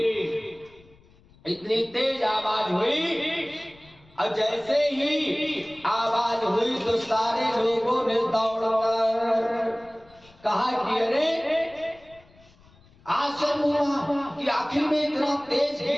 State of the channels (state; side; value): noise; left; rumble, 28 dB below the sound